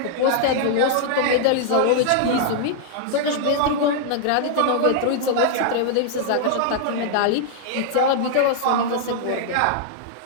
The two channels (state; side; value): different; both; correlation -0.01